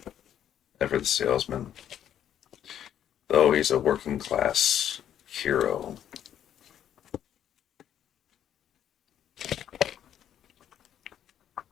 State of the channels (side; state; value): right; quieter; 10.2 dB